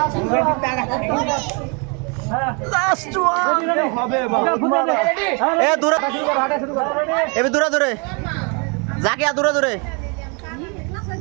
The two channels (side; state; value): left; quieter; 34.1 dB